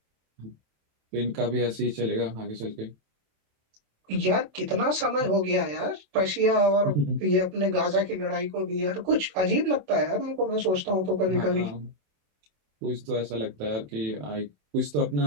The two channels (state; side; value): late; left; 27 ms